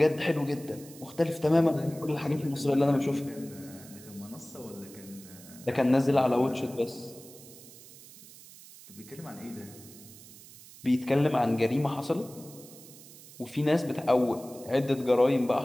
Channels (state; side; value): noise; right; hiss, 19 dB below the sound